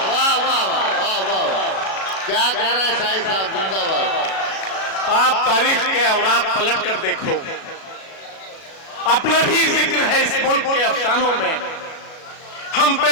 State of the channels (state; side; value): late; right; 37 ms